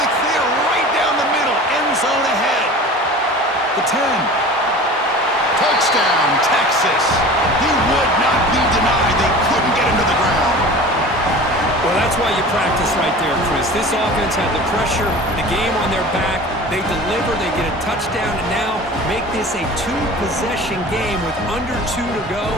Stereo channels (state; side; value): normal; both; correlation 0.39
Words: clear right down the middle. End zone ahead. The 10. Touchdown, Texas. He would not be denied. They couldn't get him to the ground. Well, that's That's why you practice right there, Chris. This offense had the pressure, the game on their back. They deliver, they get a touchdown, and now make this a two-possession game with under 2 to go.